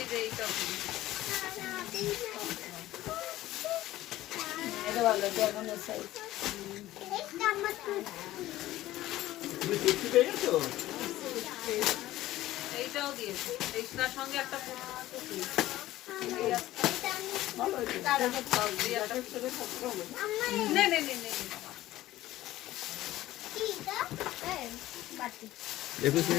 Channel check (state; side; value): quieter; right; 15.5 dB